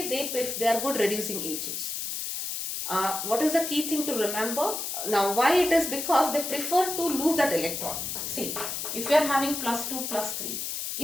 they are good reducing agents. What is the key thing to remember? Now, why it is? Because they prefer to lose that electron. See, if you are having +2, +3,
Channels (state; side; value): noise; left; hiss, 4 dB below the sound